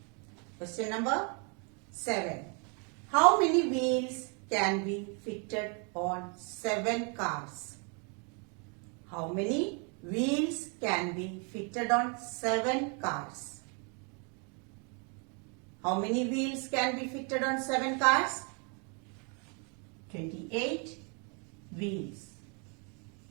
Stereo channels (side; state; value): left; quieter; 36.2 dB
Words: Question number 7. How many wheels can be fitted on 7 cars? How many wheels can be fitted on 7 cars? How many wheels can be fitted on 7 cars? 28 wheels.